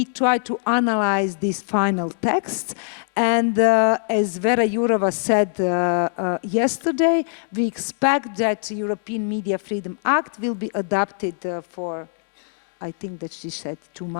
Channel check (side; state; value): right; silent; digital silence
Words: try to analyze these final texts, and as Vera Jourova said yesterday, we expect that the European Media Freedom Act will be adopted for, I think that she said, 2